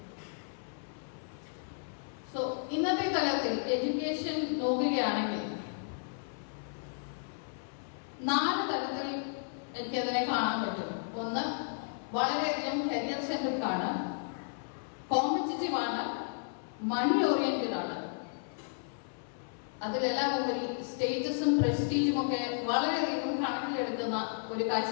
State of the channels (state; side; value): silent; right; 56 dB below the other